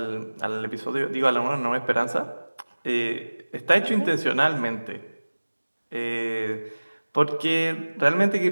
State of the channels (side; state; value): both; inverted; correlation -1.00